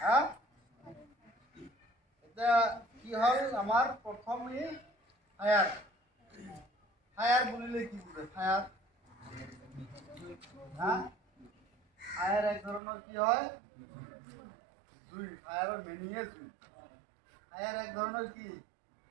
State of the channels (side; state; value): left; drops out; at 12.8 s